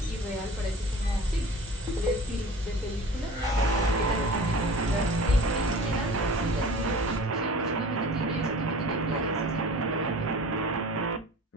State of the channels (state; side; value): normal; both; correlation 0.40